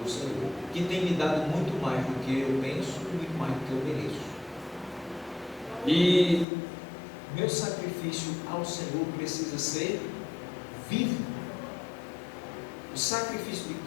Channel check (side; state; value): right; drops out; at 6.5 s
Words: o Senhor, que tem me dado muito mais do que eu penso e muito mais do que eu mereço. E meu sacrifício ao Senhor precisa ser vivo. O sacrifício de